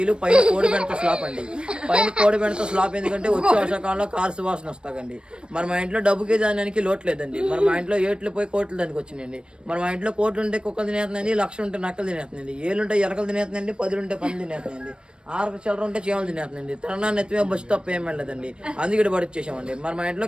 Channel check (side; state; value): left; late; 0.054 ms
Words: పైన కోడిబెండతో స్లాప్ అండి. పైన కోడిబెండతో స్లాప్ ఎందుకంటే వచ్చే వర్షాకాలంలో కారు సువాసన వస్తాయండి. మరి మా ఇంట్లో డబ్బుకి దానికి లోటు లేదండి. మరి మా ఇంట్లో ఏట్లు పోయి కోట్లు దానికి వచ్చినాయండి. మరి మా ఇంట్లో కోట్లు ఉంటే కుక్కలు తినేస్తున్నాయండి, 1,00,000 ఉంటే నక్కలు తినేస్తున్నాయండి, 7 ఉంటే ఎరకలు తినేస్తున్నాయండి, 10 ఉంటే పంది తినేస్తున్నాయండి, 6 చిల్లర ఉంటే చీమలు తినేస్తున్నాయండి. తిరణాన్ని ఎత్తిమే బస్సు తప్ప ఏం వెళ్ళలేదండి. అందుకే పడిచ్చేసామండి. మరి మా ఇంట్లో